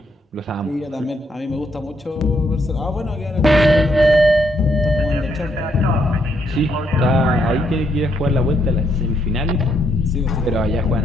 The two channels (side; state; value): both; normal; correlation 0.75